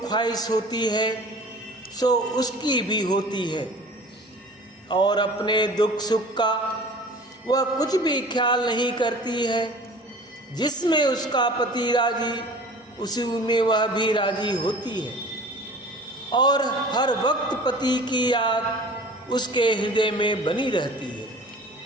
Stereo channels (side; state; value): both; normal; correlation 0.43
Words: ख्वाहिश होती है सो उसकी भी होती है, और अपने दुख सुख का वह कुछ भी ख्याल नहीं करती है। जिसमें उसका पति राजी उसी में वह भी राजी होती है, और हर वक्त पति की याद उसके हृदय में बनी रहती है।